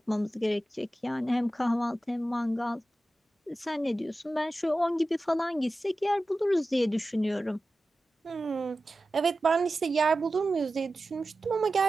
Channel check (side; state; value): both; normal; correlation 0.94